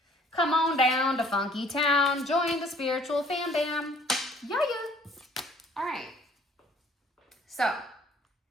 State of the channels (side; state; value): both; normal; correlation 0.57